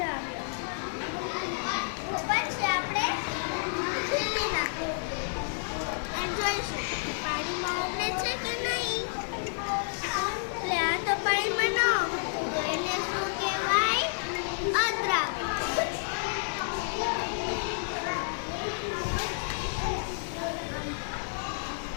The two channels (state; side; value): silent; right; digital silence